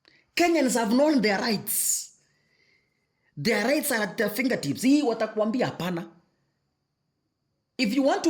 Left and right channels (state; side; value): identical; both; correlation 1.00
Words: Kenyans have known their rights. Their rights are at their fingertips. Hii watakuambia hapana. If you want